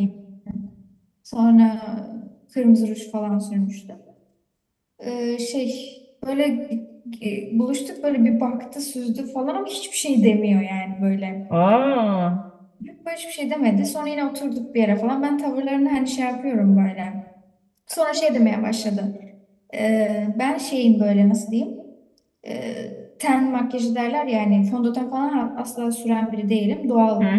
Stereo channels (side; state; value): both; identical; correlation 1.00